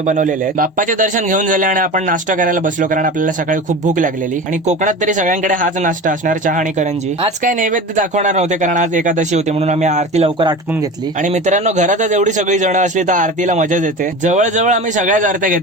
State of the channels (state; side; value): normal; both; correlation 0.31